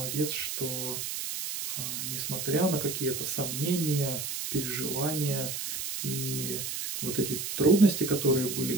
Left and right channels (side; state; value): right; noise; hiss, 4 dB below the sound